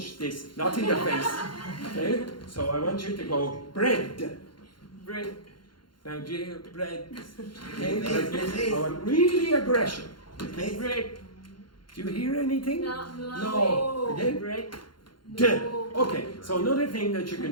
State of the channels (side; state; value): right; late; 0.72 ms